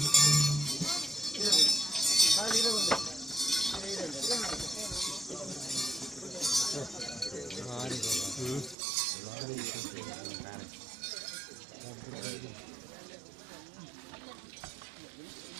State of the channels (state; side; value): drops out; left; at 8.8 s